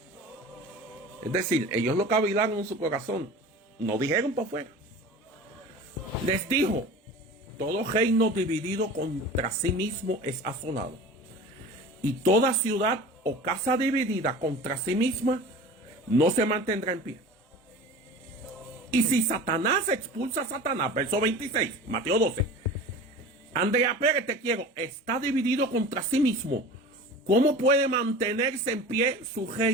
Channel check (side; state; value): both; normal; correlation 0.37